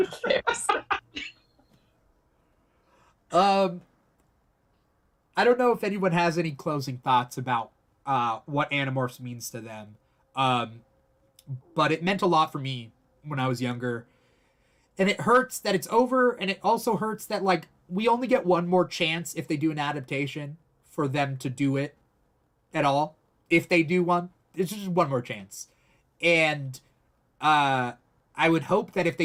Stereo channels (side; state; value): both; identical; correlation 1.00